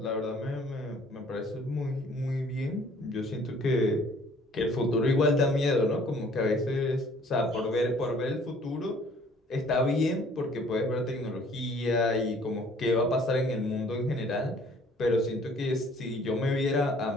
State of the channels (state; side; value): normal; both; correlation 0.56